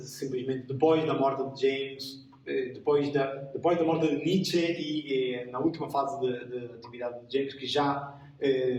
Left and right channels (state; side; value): identical; both; correlation 1.00